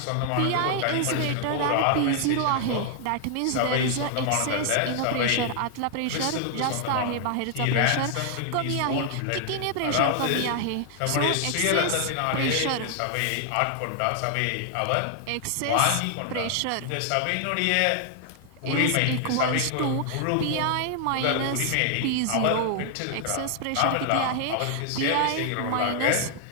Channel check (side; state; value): both; different; correlation 0.00